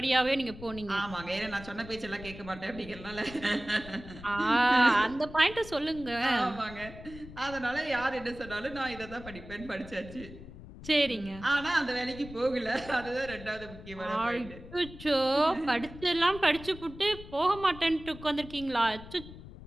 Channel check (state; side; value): noise; left; rumble, 15 dB below the sound